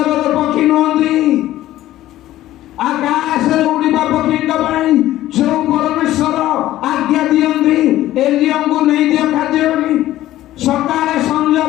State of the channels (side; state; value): right; quieter; 14.5 dB